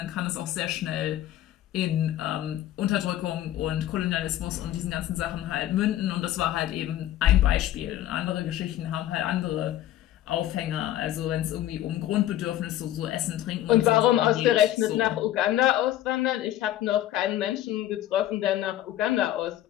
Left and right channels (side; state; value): right; quieter; 13.2 dB